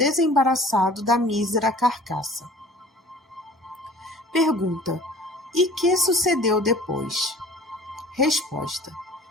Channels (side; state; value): both; normal; correlation 0.47